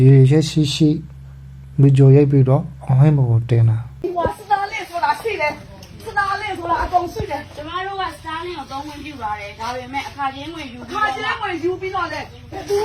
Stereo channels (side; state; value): both; identical; correlation 1.00